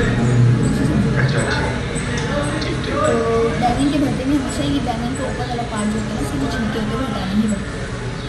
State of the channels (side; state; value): both; identical; correlation 1.00